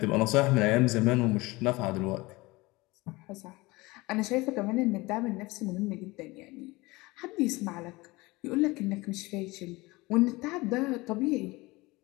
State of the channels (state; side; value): quieter; right; 22.2 dB